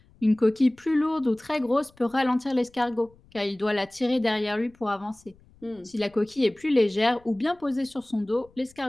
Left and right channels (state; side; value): noise; left; rumble, 29 dB below the sound